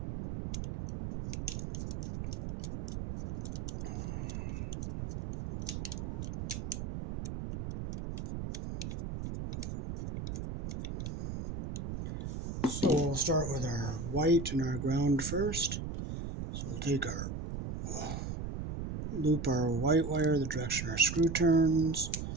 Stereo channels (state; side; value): noise; right; rumble, 6 dB below the sound